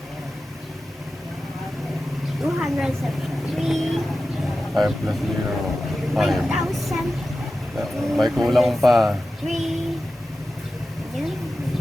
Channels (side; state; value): both; normal; correlation 0.93